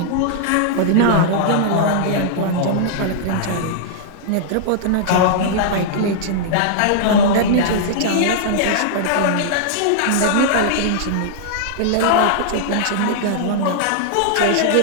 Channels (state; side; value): different; both; correlation -0.02